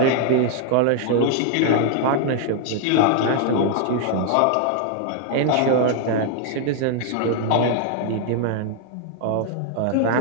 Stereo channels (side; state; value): both; different; correlation 0.00